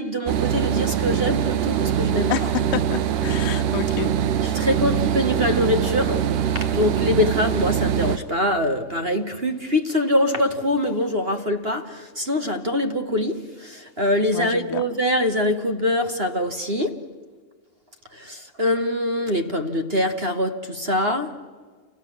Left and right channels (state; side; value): late; left; 2.8 ms